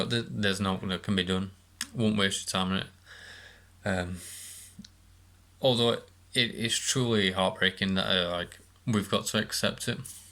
there's nothing that can be done. Won't waste your time on it. Although it is truly heartbreaking that we've got to accept it.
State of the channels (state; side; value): identical; both; correlation 1.00